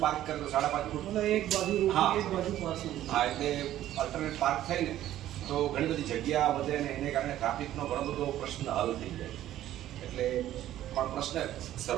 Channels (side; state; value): left; quieter; 13.0 dB